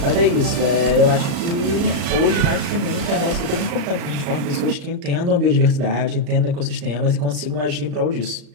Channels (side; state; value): left; late; 35 ms